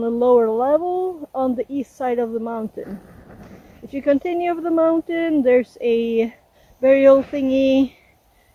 a lower level on the east side of the mountain. If you continue up the mountain, there's a burial thingy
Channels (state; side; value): identical; both; correlation 1.00